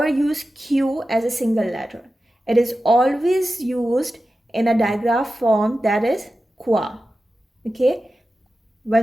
use Q as a single letter. It is always used in a digraph form, that is qua. Okay?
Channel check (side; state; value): both; normal; correlation 0.93